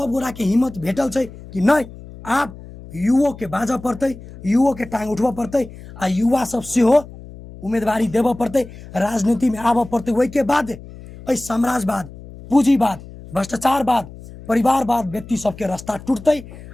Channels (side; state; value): left; noise; hum, 16 dB below the sound